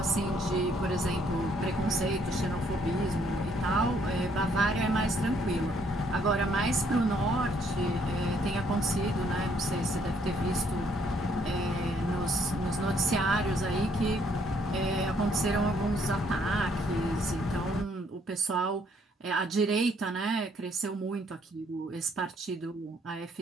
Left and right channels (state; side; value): normal; both; correlation 0.67